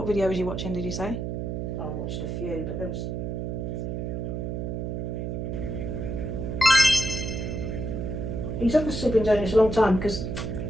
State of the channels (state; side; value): noise; right; hum, 3 dB below the sound